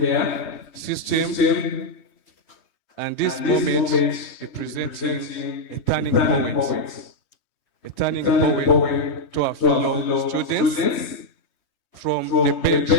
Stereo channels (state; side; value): late; right; 3.2 ms